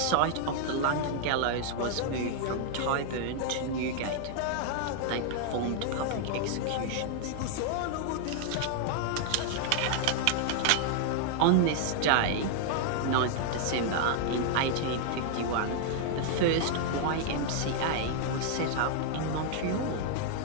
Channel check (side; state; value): both; different; correlation -0.01